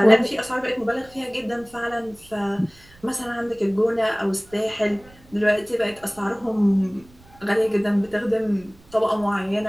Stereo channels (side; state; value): right; noise; rumble, 27 dB below the sound